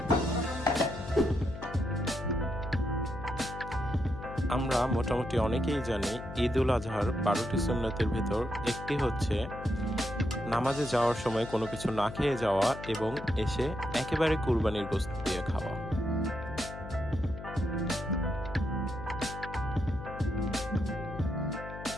আমরা মোটামুটি অনেকেই জানি ঈদ উল আজহার 12টি সুন্নতের ভিতর একটি হচ্ছে নামাজে যাওয়ার সময় কোনো কিছু না খেয়ে যাওয়া এবং এসে একেবারে কুরবানির গোশত দিয়ে খাওয়া।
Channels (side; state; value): left; noise; hum, 11 dB below the sound